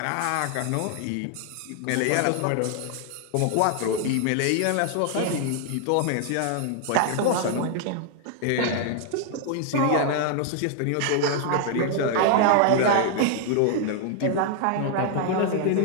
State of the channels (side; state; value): both; different; correlation 0.00